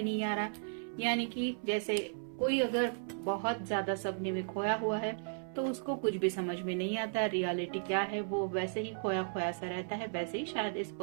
नहीं आ रहा, यानी कि जैसे कोई अगर बहुत ज्यादा सपने में खोया हुआ है तो उसको कुछ भी समझ में नहीं आता, रियलिटी क्या है वो वैसे ही खोया खोया सा रहता है। वैसे ही शायद इस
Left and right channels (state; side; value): silent; left; 54 dB below the other